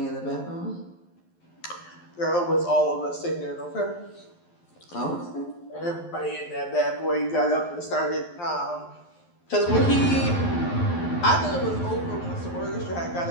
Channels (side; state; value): right; late; 11 ms